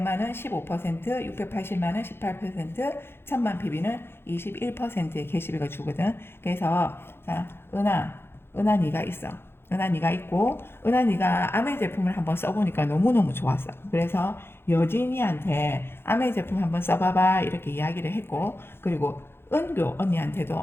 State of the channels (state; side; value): late; right; 0.11 ms